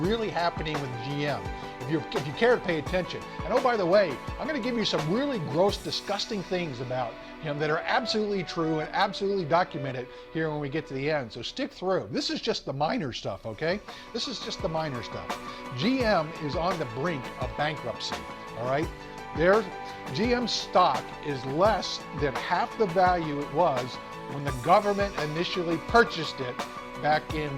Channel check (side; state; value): both; identical; correlation 1.00